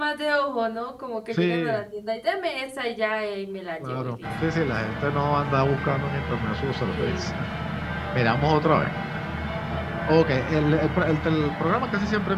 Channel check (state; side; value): identical; both; correlation 1.00